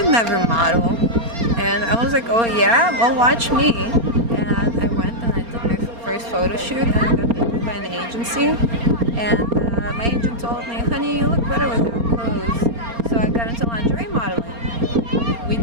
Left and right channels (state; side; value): late; left; 4.3 ms